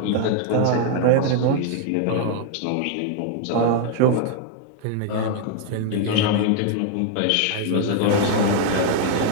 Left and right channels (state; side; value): different; both; correlation 0.00